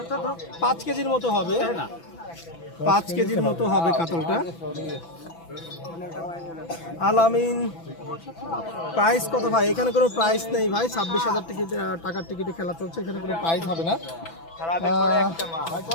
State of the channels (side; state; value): right; late; 6.0 ms